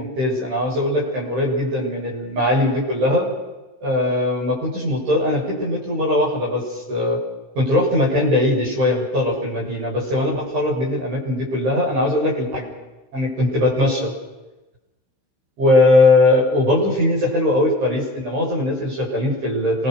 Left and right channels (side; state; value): left; late; 16 ms